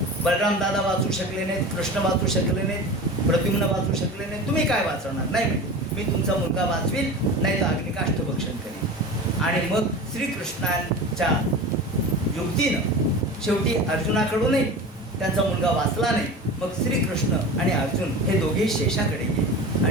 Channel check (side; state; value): both; normal; correlation 0.32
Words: बलराम दादा वाचू शकले नाहीत, कृष्ण वाचू शकले नाहीत, प्रद्युम्न वाचू शकले नाहीत, तुम्ही काय वाचवणार? नाही म्हणजे मी तुमचा मुलगा वाचवील, नाही तर अग्निकाष्ठभक्षण करेन. आणि मग श्रीकृष्णांच्या युक्तीनं शेवटी अर्जुनाकडूनही त्यांचा मुलगा वाचला नाही. मग श्रीकृष्ण आणि अर्जुन हे दोघेही शेषाकडे गेले